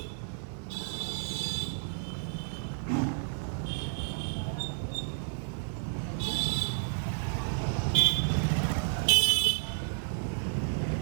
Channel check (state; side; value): silent; left; 57 dB below the other